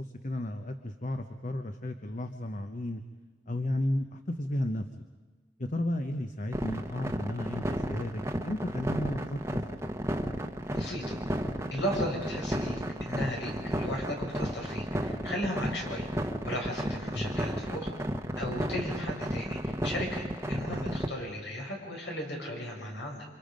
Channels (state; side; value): normal; both; correlation 0.76